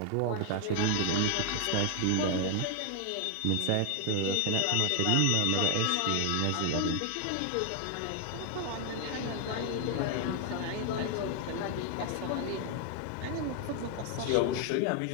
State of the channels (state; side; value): different; both; correlation 0.01